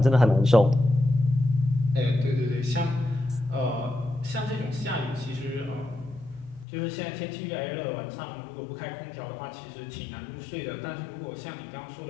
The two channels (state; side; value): drops out; right; at 6.7 s